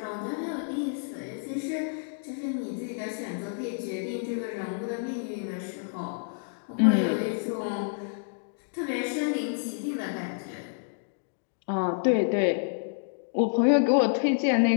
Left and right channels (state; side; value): silent; right; digital silence